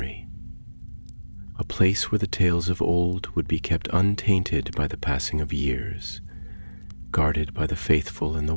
a place where the tales of old would be kept untainted by the passing of years, guarded by the faithful and the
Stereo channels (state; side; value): inverted; both; correlation -1.00